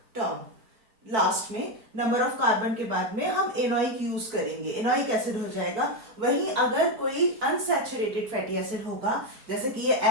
term. Last में नंबर ऑफ कार्बन के बाद में हम एनोइक यूज करेंगे, एनोइक एसिड हो जाएगा. वहीं अगर कोई अनसैचुरेटेड फैटी एसिड होगा, जैसे कि ये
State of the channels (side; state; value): left; late; 4.5 ms